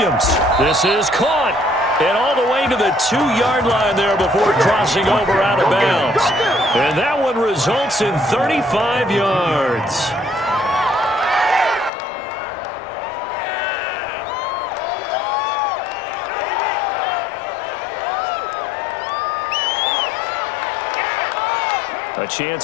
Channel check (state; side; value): drops out; right; at 11.9 s